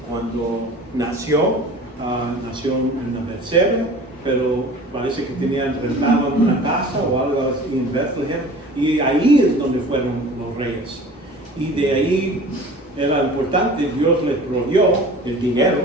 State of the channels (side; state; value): both; normal; correlation 0.42